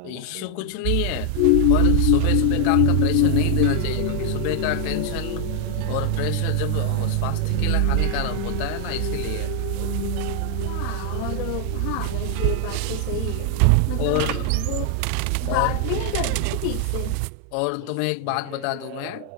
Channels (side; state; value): both; different; correlation 0.00